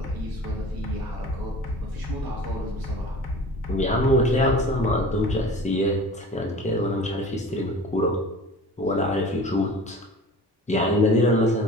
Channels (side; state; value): both; normal; correlation 0.40